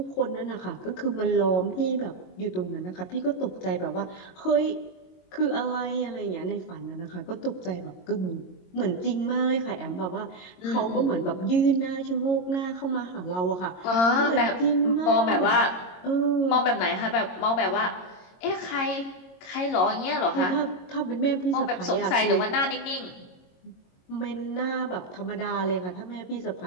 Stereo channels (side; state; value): right; late; 22 ms